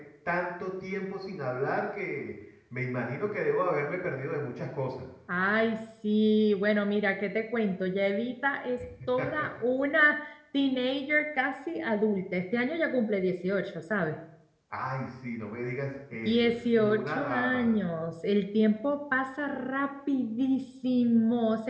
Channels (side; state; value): both; identical; correlation 1.00